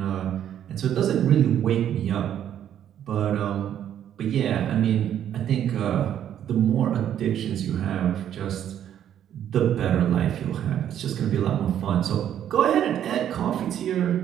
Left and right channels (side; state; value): left; quieter; 10.2 dB